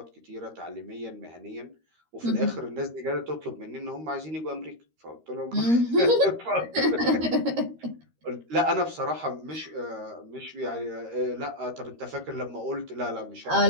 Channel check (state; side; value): late; left; 13 ms